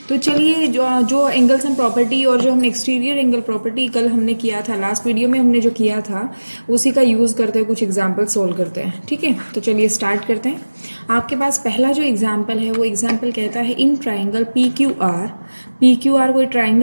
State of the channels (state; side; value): inverted; both; correlation -1.00